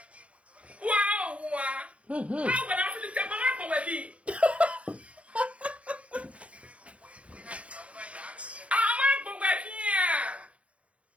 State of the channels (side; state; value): left; late; 0.063 ms